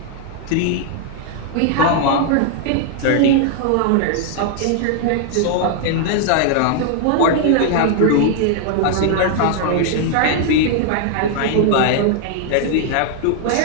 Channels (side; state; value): both; different; correlation 0.00